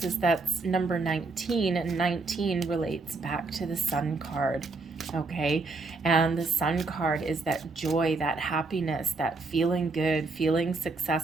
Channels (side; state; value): left; quieter; 3.7 dB